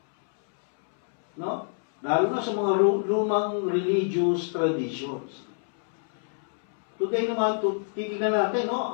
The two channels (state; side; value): silent; right; 61 dB below the other